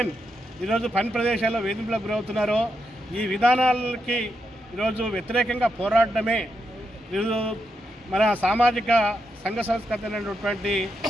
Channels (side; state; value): both; normal; correlation 0.83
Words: ఈరోజు పని ప్రదేశాల్లో వేధింపులకు గురవుతున్నారో, ఈ విధానాలకి ఈరోజు వ్యతిరేకంగా పోరాడమే ఈరోజు మన సామాజిక సంఘ సంస్కృతి అయినటువంటి